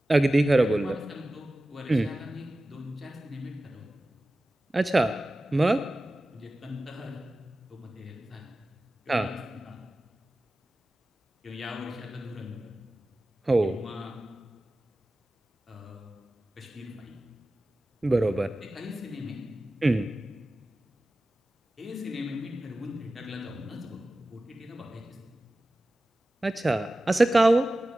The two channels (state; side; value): normal; both; correlation 0.95